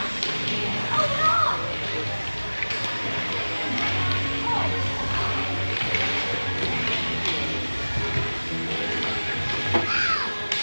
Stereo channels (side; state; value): both; inverted; correlation -1.00